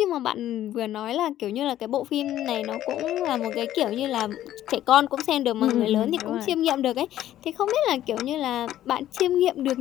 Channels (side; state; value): right; quieter; 12.7 dB